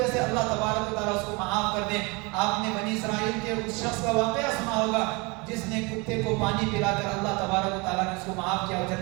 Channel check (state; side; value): quieter; left; 27.1 dB